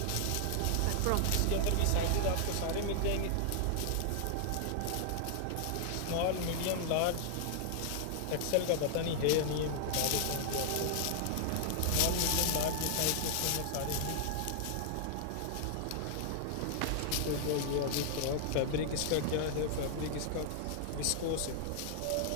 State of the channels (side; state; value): both; different; correlation -0.01